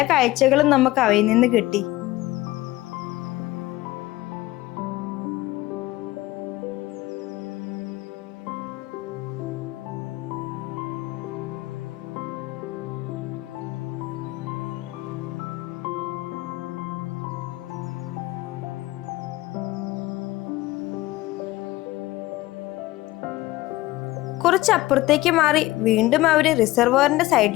കാഴ്ചകളും നമുക്ക് അവയിൽ നിന്ന് കിട്ടി. കുറച്ച് അപ്പുറത്തേക്ക് മാറി വീണ്ടും അവര് റിസർവോയറിന്റെ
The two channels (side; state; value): right; quieter; 18.1 dB